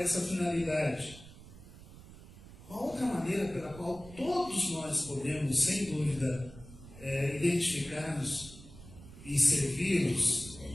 finalidade. Uma outra maneira pela qual todos nós podemos, sem dúvida, identificar-nos e servi-los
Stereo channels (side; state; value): right; noise; rumble, 18 dB below the sound